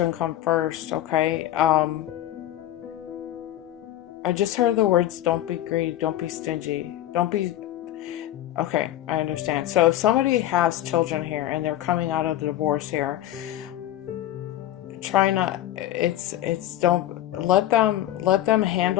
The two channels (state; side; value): quieter; right; 13.4 dB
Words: come first. Okay, I just heard the words, don't be greedy, don't be stingy, don't be. Okay, I understand. So if somebody has children here and they're coming out of the divorce here, try not, don't let them